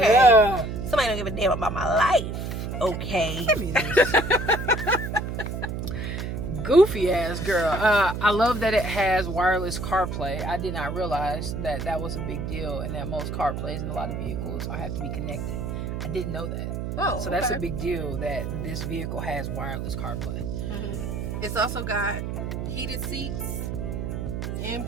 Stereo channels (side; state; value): right; noise; hum, 4 dB below the sound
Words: Somebody don't give a damn about my life. Okay. Goofy ass girl. I love that it has wireless CarPlay. I did not realize that was a big deal, and that most CarPlays in a lot of vehicles have to be connected. I didn't know that. So that's a big deal that this vehicle has wireless CarPlay. It's also got heated seats and